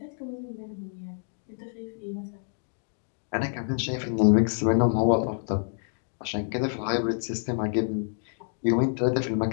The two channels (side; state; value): right; silent; digital silence